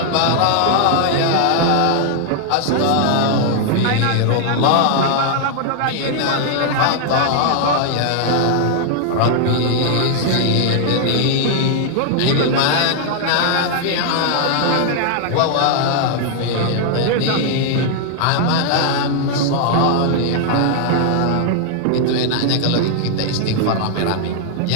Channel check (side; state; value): both; different; correlation -0.01